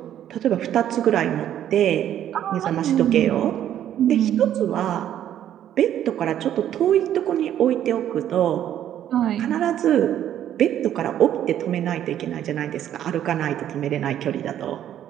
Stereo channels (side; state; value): left; quieter; 11.0 dB